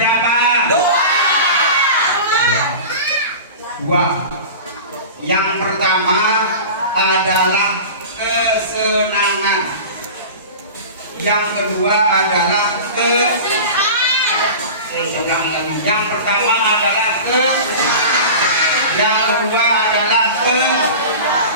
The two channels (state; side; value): inverted; both; correlation -0.33